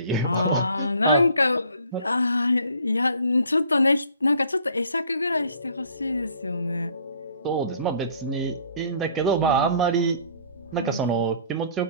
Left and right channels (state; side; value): inverted; both; correlation -0.54